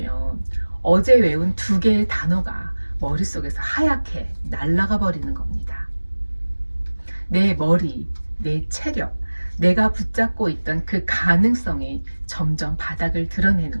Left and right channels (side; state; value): both; inverted; correlation -1.00